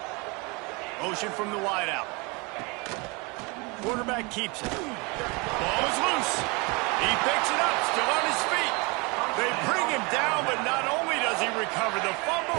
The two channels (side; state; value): left; quieter; 28.4 dB